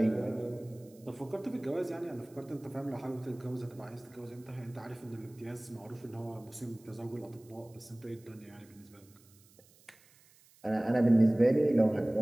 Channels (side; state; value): right; noise; hiss, 28 dB below the sound